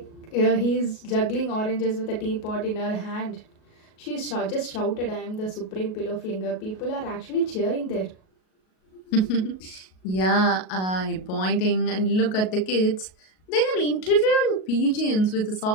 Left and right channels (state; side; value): late; right; 38 ms